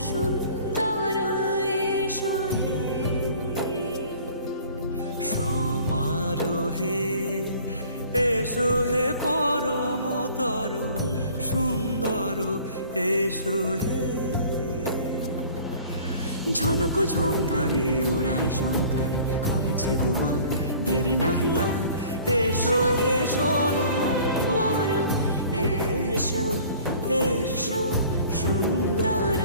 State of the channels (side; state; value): both; inverted; correlation -0.49